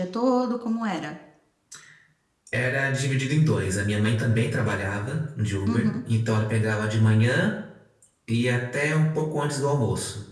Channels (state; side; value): identical; both; correlation 1.00